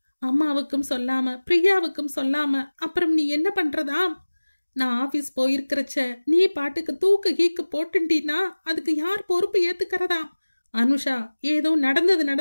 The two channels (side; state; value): both; inverted; correlation -1.00